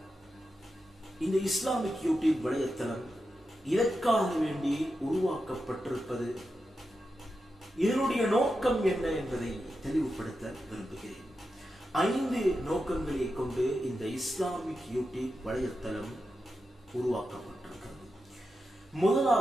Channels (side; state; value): both; normal; correlation 0.89